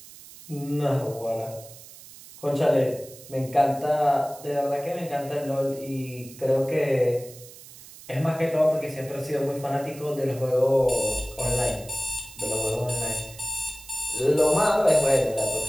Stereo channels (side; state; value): right; noise; hiss, 18 dB below the sound